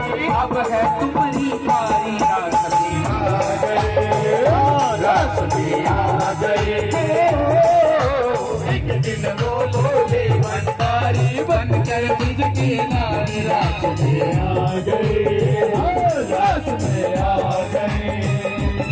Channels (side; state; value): both; identical; correlation 1.00